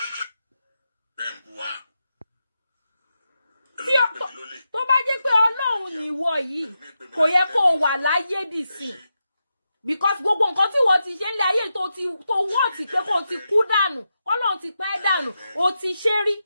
Tó bá jẹ́ pé Ọlọ́run nìwọ yìí kò yẹ kó wà láyé dìsìn because gbogbo nǹkan tí wọ́n ti ṣe ń lé ayé tó wọ́n ti pé kó ti kú dànù Ọlọ́run ti pẹ́ dànù ó ti ṣe rí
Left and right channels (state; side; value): inverted; both; correlation -0.88